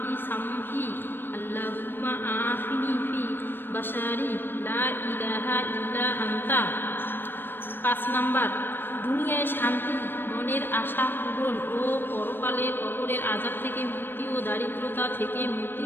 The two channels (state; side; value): late; right; 0.097 ms